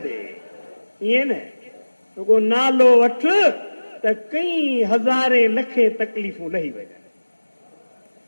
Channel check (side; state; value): both; inverted; correlation -1.00